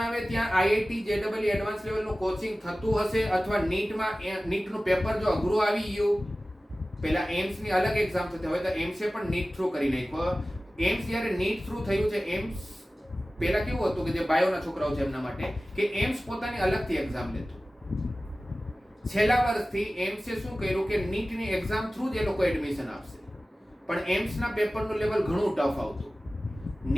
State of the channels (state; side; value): normal; both; correlation 0.96